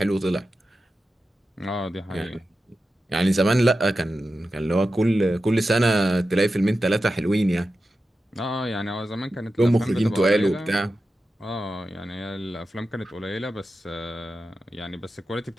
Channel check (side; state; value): both; normal; correlation 0.92